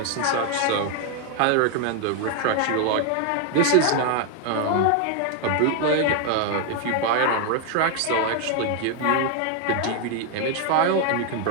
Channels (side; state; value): both; different; correlation 0.01